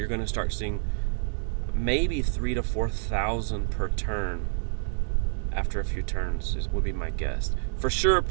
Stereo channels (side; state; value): left; silent; digital silence